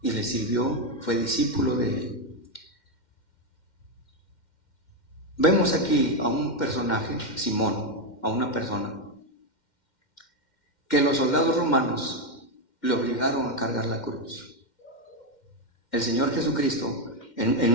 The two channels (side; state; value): right; late; 2.1 ms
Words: y le sirvió, fue discípulo de él. Vemos aquí a un personaje, Simón, a una persona que los soldados romanos le obligaron a cargar la cruz. El Señor Jesucristo,